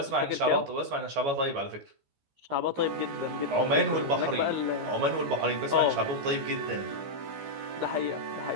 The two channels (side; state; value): left; late; 14 ms